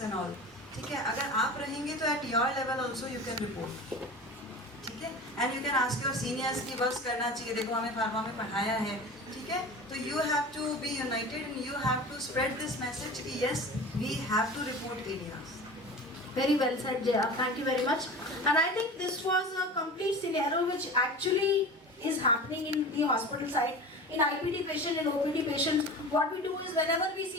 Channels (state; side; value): normal; both; correlation 0.34